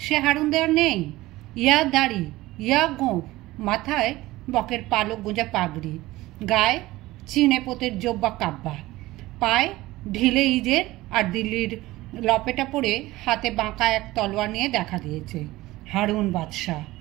সে হারুনদে আর নেই। ইয়া দাড়ি, ইয়া গোঁফ, মাথায় বকের পালক গোঁজা পাগড়ি, গায়ে চিনে পোতের জব্বা কাব্বা, পায়ে ঢিলে ইজের আর দিল্লির লপেটা পরে হাতে বাঁকা এক তলোয়ার নিয়ে দেখা দিয়েছে। হারুন বাদশাহ।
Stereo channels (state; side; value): quieter; left; 18.2 dB